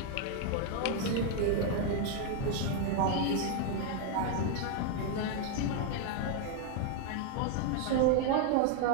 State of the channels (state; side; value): different; both; correlation 0.01